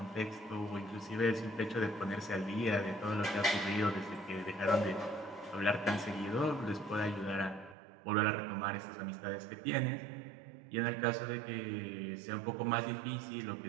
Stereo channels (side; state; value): left; drops out; at 7.8 s